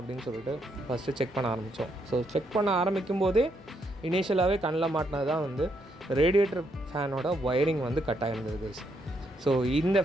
சொல்லிட்டு ஃபஸ்ட்டு செக் பண்ண ஆரம்பித்தோம். ஸோ செக் பண்ண ஆரம்பிக்கும் போதே இனிஷியலாகவே கண்ணில் மாட்டினது தான் வந்து ரேடியேட்டர் ஃபேனோட ஒயரிங் வந்து கட் ஆகிருந்தது. ஸோ இந்த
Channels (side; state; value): both; normal; correlation 0.76